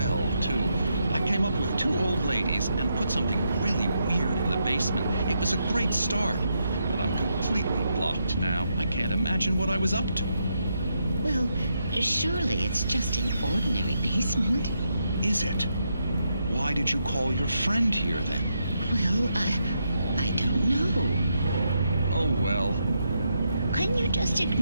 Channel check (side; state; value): both; inverted; correlation -0.81